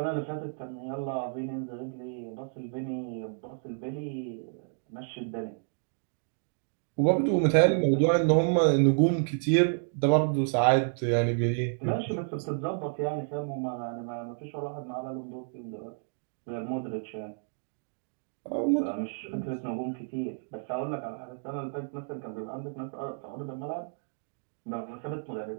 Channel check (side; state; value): left; silent; digital silence